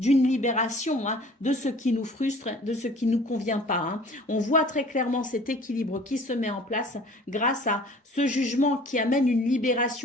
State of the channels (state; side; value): normal; both; correlation 0.49